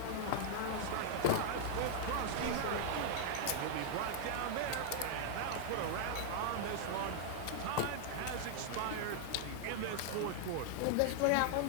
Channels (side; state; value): both; different; correlation -0.01